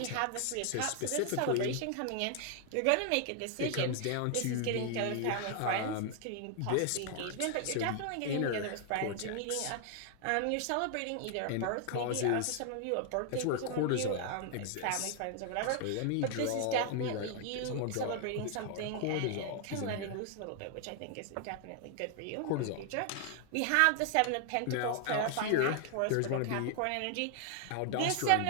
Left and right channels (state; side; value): different; both; correlation 0.00